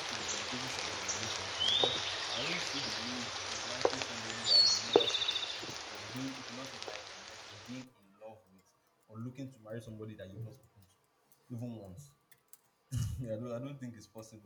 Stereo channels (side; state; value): both; identical; correlation 1.00